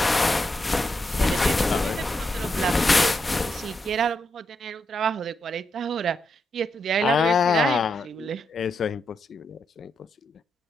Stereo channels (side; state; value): both; normal; correlation 0.83